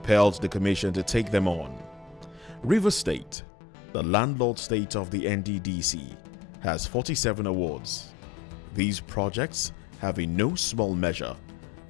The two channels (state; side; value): drops out; right; at 3.4 s